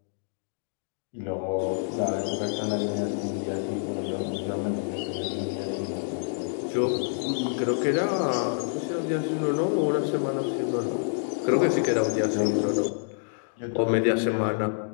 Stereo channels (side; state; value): right; silent; digital silence